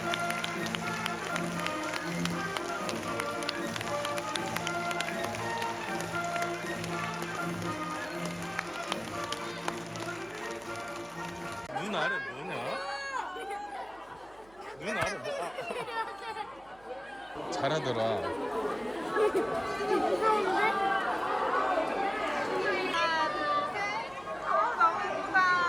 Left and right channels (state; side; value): noise; right; hum, 26 dB below the sound